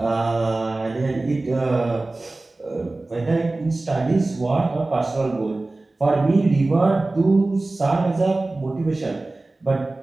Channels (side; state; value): left; quieter; 3.0 dB